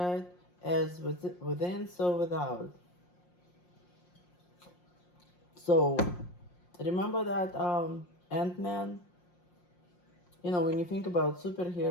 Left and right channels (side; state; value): right; late; 5.6 ms